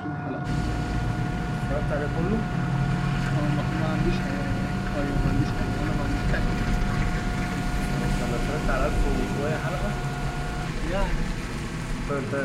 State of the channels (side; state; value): both; identical; correlation 1.00